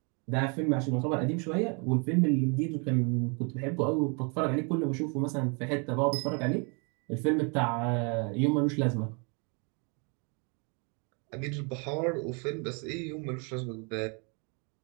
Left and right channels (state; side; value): quieter; left; 34.7 dB